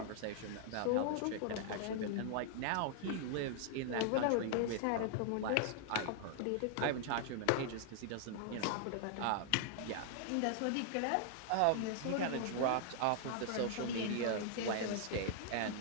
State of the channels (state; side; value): different; both; correlation -0.01